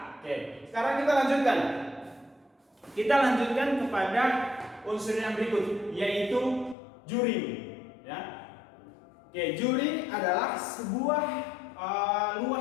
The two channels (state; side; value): drops out; right; at 6.8 s